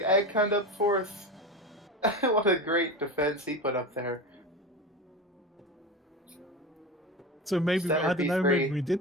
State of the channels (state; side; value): normal; both; correlation 0.25